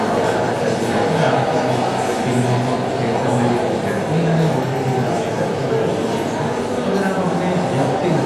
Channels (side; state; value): both; identical; correlation 1.00